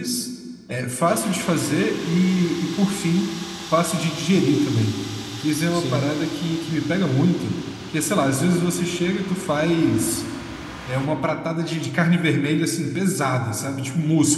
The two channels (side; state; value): both; identical; correlation 1.00